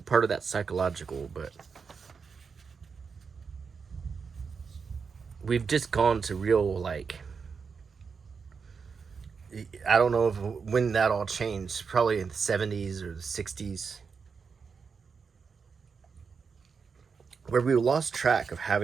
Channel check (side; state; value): left; quieter; 5.6 dB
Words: of that's psychological, but we've just gone to real like, I don't know if, when that all changed, probably in the 70s or the 60s, where we lost track of